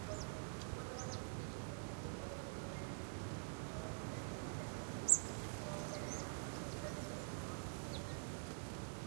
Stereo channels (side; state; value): left; silent; digital silence